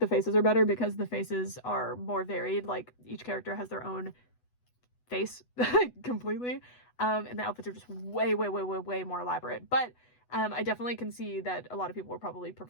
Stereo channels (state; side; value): late; right; 8.1 ms